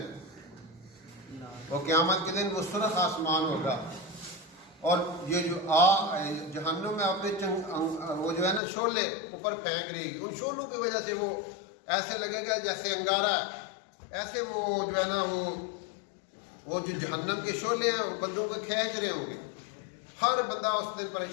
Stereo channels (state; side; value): drops out; right; at 8.6 s